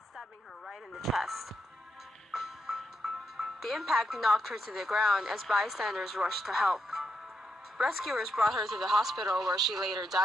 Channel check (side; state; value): both; normal; correlation 0.82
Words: stabbing her right in the chest. The impact knocked her to the ground as bystanders rushed to help. Rescuers brought her to the hospital where she later